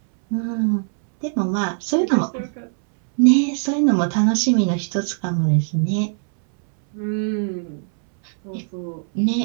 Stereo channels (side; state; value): left; silent; 64 dB below the other